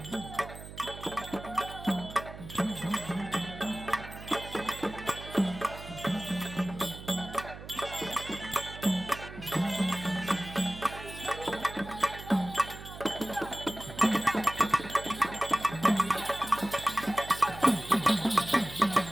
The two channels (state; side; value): noise; right; hum, 13 dB below the sound